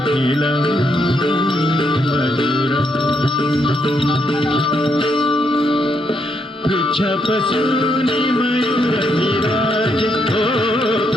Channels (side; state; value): both; normal; correlation 0.76